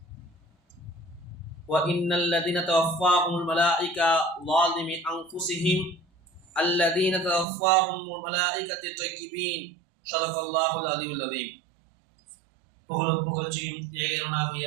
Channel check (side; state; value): left; drops out; at 7.5 s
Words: وإن الذين توفاهم الملائكة ظالم أنفسهم الذين توفاهم الملائكة طيبين صدق الله العلي العظيم. புகழும் புகழ்ச்சியும் ஏகனாகிய